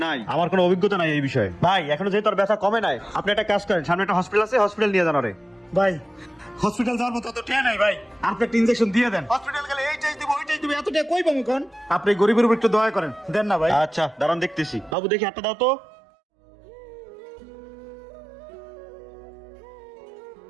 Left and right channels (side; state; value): left; drops out; at 15.0 s